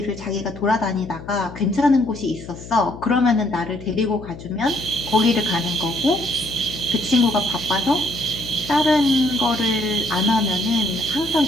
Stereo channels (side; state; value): left; noise; hum, 14 dB below the sound